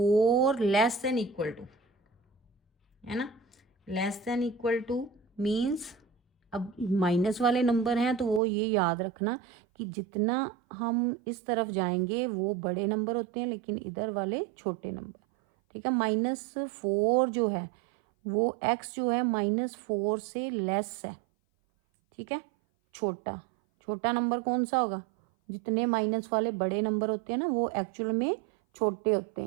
लेस देन इक्वल टू, है ना, less than equal two means, अब माइनस वाले नंबर हैं तो वो ये याद रखना कि जितना हम इस तरफ जाएंगे वो बड़े नंबर होते हैं, लेकिन इधर वाले छोटे नंबर, ठीक है। -4 जो है वो x जो है -4 से लेस है, ठीक है। छोटा छोटा नंबर कौन सा होगा? जितने माइनस वाले बड़े नंबर होते हैं ना, वो एक्चुअल में छोटे होते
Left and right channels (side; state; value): left; drops out; at 8.4 s